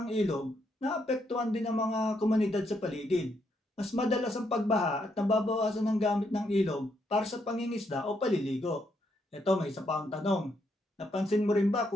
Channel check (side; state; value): both; normal; correlation 0.77